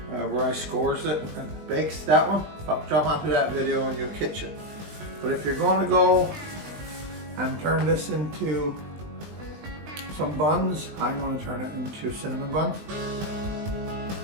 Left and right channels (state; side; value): late; left; 20 ms